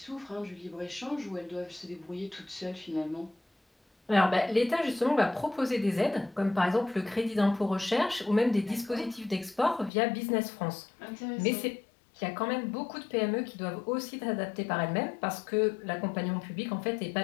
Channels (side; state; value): right; drops out; at 9.9 s